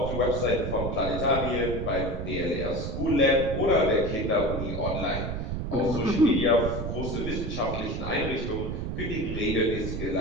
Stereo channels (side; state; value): right; noise; rumble, 4 dB below the sound